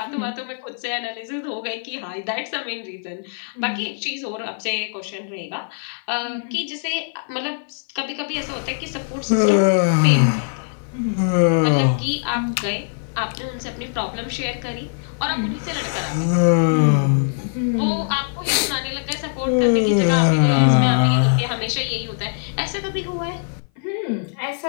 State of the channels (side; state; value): right; silent; 57 dB below the other